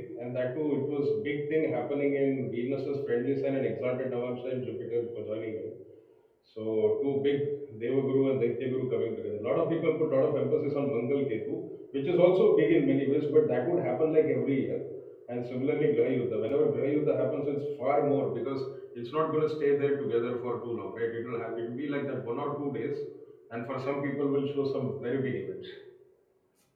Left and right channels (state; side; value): identical; both; correlation 1.00